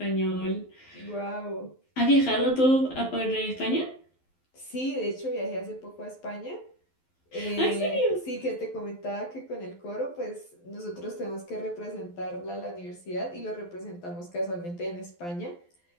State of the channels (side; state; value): right; late; 12 ms